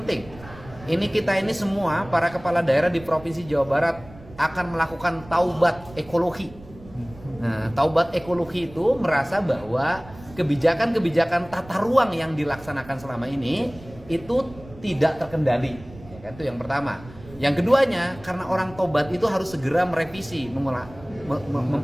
Ini kita ini semua para kepala daerah di Provinsi Jawa Barat akan melakukan taubat ekologi. Nah, taubat ekologi itu merasa bahwa kebijakan-kebijakan tata ruang yang dilaksanakan selama ini itu tidak terkendali. Ya kan? Itu yang pertama. Yang keduanya, karena orang tobat itu harus segera merevisi,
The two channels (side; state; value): right; noise; rumble, 19 dB below the sound